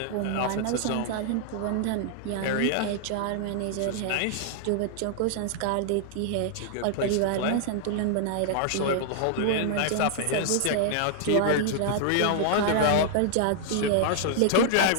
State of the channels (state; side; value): different; both; correlation -0.01